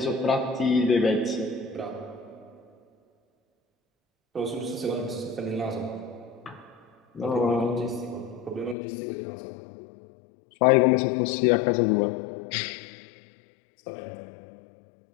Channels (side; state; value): right; drops out; at 8.8 s